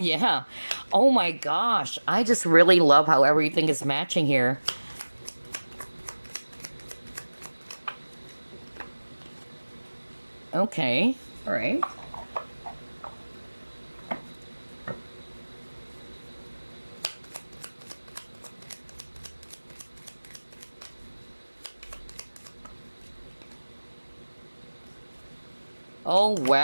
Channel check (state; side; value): inverted; both; correlation -1.00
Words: Oh, my gosh. I just really love how everything is matching here. Okay, all right. Oh,